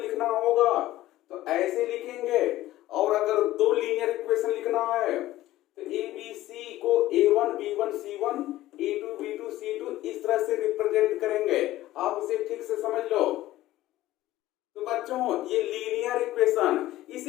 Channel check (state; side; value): quieter; right; 15.5 dB